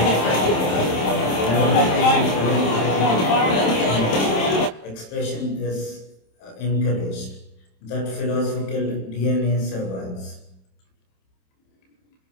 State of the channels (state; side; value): late; right; 27 ms